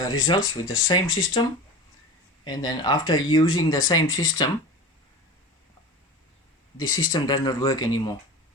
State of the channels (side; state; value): both; normal; correlation 0.32